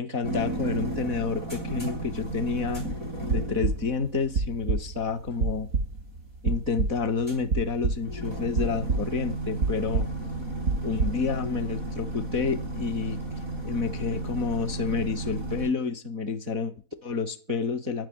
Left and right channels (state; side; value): late; left; 4.1 ms